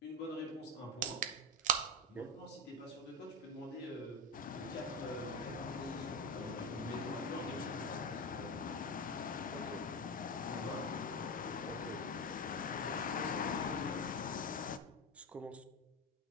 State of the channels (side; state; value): both; normal; correlation 0.15